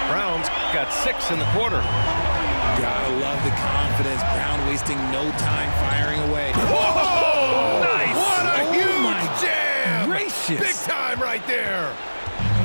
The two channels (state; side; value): inverted; both; correlation -1.00